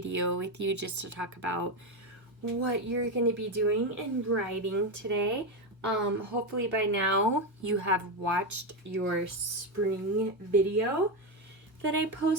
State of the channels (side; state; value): both; normal; correlation 0.11